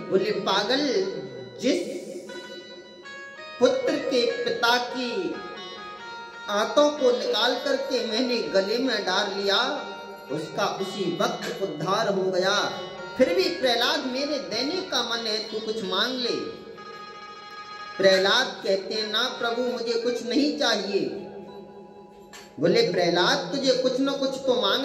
बोले पागल, जिस पुत्र के पिता की आंतों को निकाल करके मैंने गले में डाल लिया, उसका उसी वक्त उद्धार हो गया। फिर भी प्रहलाद मेरे देने का मन है, तू कुछ मांग ले। प्रहलाद कहते हैं, ना प्रभु, मुझे कुछ नहीं चाहिए। बोले प्रहलाद, तुझे कुछ न कुछ तो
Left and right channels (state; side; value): identical; both; correlation 1.00